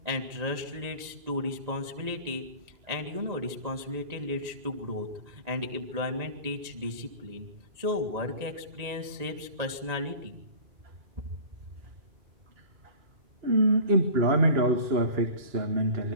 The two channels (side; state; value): left; late; 1.9 ms